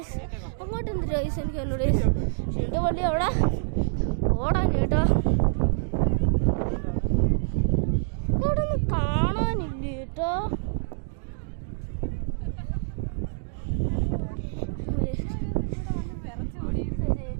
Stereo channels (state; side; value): silent; left; digital silence